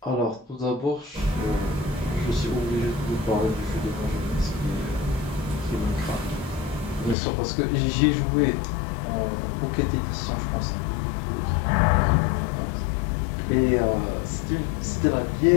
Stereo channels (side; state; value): right; drops out; at 7.2 s